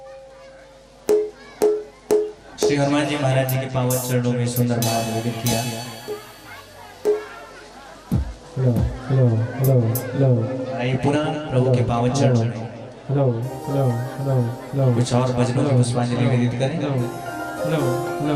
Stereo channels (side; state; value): both; identical; correlation 1.00